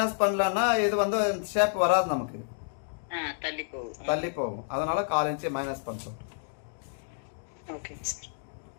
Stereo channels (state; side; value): silent; right; digital silence